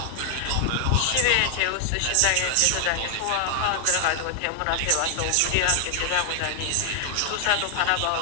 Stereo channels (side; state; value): both; different; correlation 0.00